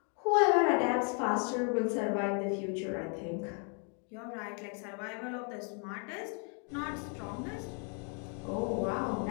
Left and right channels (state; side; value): quieter; right; 39.8 dB